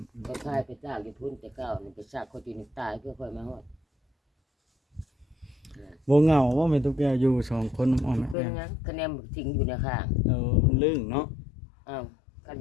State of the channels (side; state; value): right; drops out; at 8.3 s